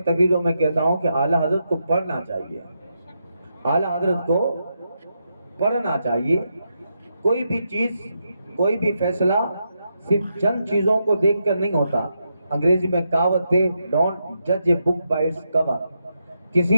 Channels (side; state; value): both; inverted; correlation -0.83